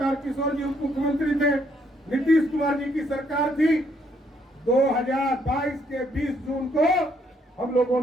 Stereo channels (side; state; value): both; normal; correlation 0.70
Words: जी उप मुख्यमंत्री थे, नीतीश कुमार जी की सरकार थी। 2022 के 20 जून को हम लोगों